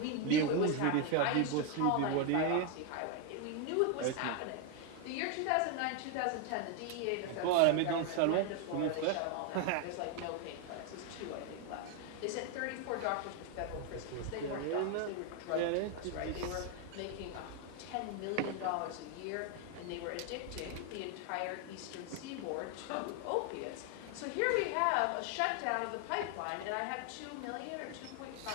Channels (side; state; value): both; different; correlation 0.01